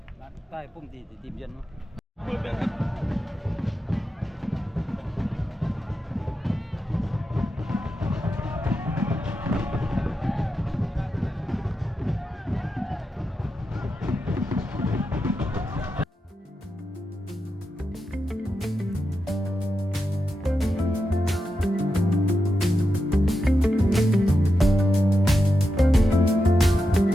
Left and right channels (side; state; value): both; normal; correlation 0.88